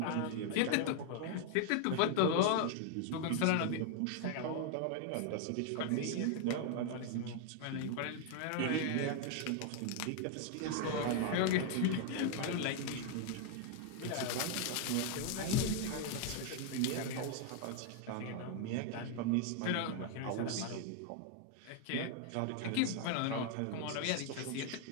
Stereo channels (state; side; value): different; both; correlation 0.00